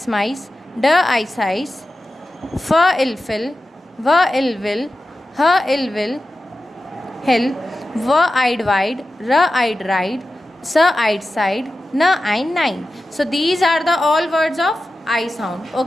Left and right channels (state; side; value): normal; both; correlation 0.93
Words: माइस, ड आइस आइस, फ इल फिल, व इल विल, ह इल विल हिल, व आइड वाइड, र आइड राइड, स आइड साइड, न आइन nine. So these are the all words of I sound.